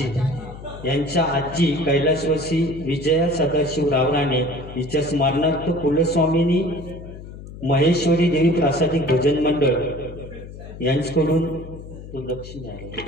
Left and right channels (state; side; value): noise; left; hum, 14 dB below the sound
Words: यांच्या आजी कैलासवासी विजया सदाशिव रावराणे हिच्या स्मरणार्थ कुलस्वामिनी महेश्वरी देवी प्रासादिक भजन मंडळ यांच्याकडून